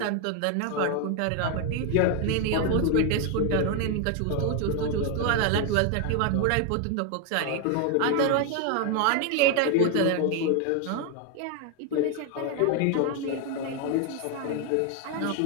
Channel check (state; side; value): different; both; correlation 0.01